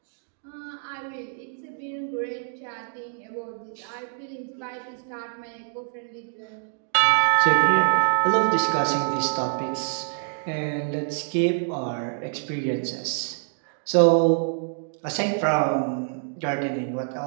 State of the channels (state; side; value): silent; left; digital silence